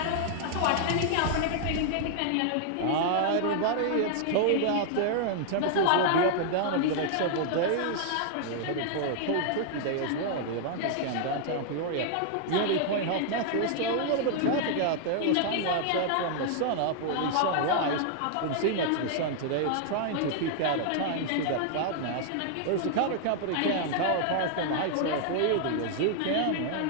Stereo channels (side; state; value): both; different; correlation -0.01